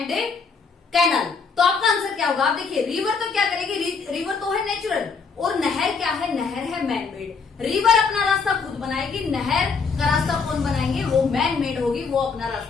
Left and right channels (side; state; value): right; quieter; 5.1 dB